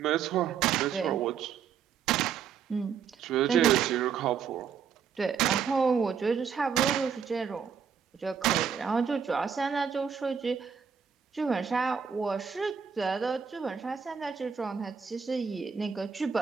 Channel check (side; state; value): left; quieter; 7.0 dB